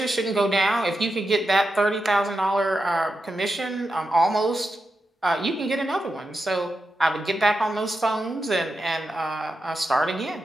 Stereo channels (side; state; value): both; normal; correlation 0.88